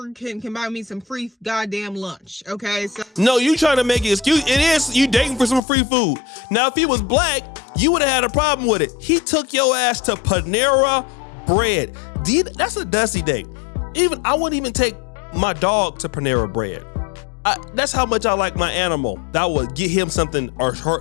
can buy me some free goddamn lunch. Okay? So no, you trying to make an excuse. It is you dating for some free food. Now, if he was black, you would have had a problem with it. He took your ass to Panera Bread. That's a dusty date. I wouldn't even take my dog to Panera Bread. That's how much I like my animal. That would get him something or her.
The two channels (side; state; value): right; drops out; at 5.6 s